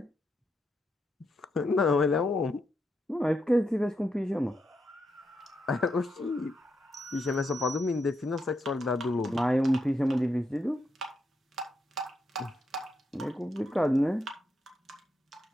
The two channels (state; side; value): normal; both; correlation 0.82